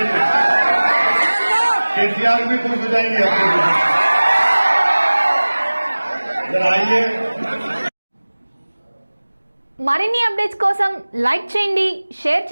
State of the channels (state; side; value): inverted; both; correlation -1.00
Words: लिए। केसीआर भी खुश हो जाएंगे आपके, जरा आइए। మరిన్ని అప్డేట్స్ కోసం లైక్ చేయండి, షేర్